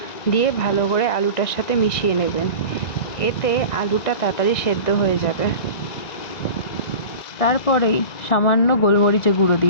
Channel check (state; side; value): late; right; 1.9 ms